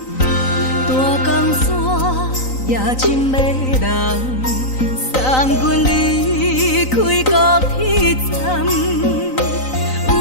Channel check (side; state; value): right; late; 3.9 ms